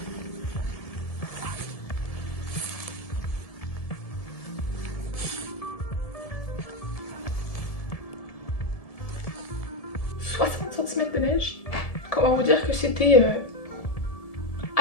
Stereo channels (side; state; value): right; late; 1.7 ms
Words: De neige. Comment vous dire que c'était